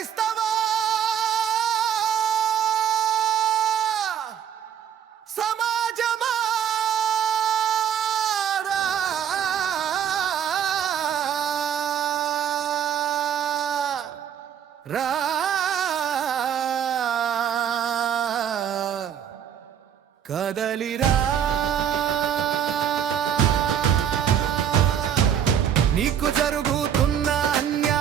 సమాజమా రా కదలిరా నీకు జరుగుతున్న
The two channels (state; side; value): quieter; left; 9.1 dB